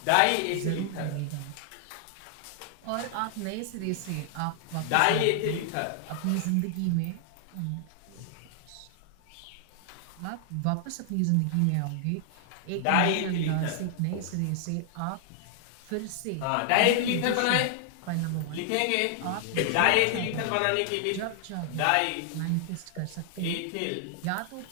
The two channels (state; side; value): different; both; correlation 0.00